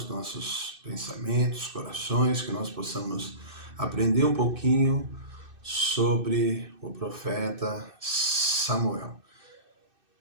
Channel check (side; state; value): left; late; 2.6 ms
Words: nossos pensamentos, corações, que nós possamos aprender um pouquinho sobre o profeta Samuel.